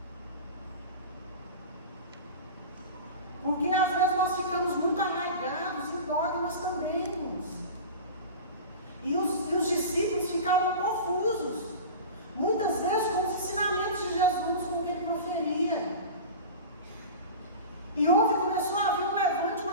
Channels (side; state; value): both; inverted; correlation -0.32